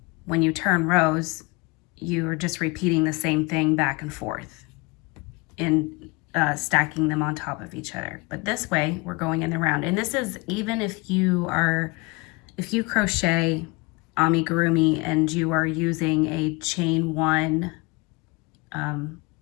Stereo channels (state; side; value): quieter; right; 26.1 dB